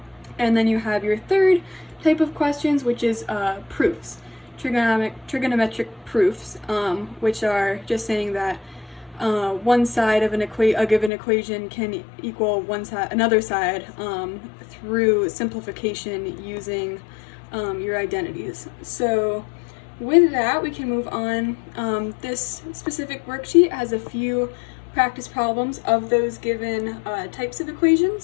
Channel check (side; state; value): right; drops out; at 11.1 s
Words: And then you have your third type of questions, which is proofs, trigonometric proofs, which are just saying that one side of a given equation can equal another side through simplification using your identities. So with that, we can move on. This specific worksheet has a few practice problems of those given types of